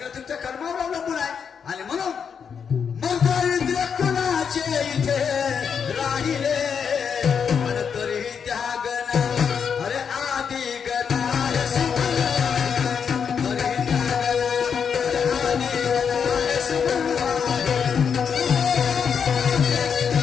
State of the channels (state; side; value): quieter; right; 6.8 dB